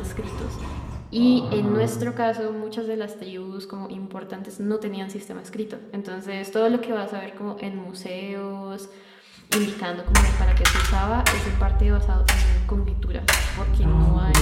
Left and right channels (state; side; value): identical; both; correlation 1.00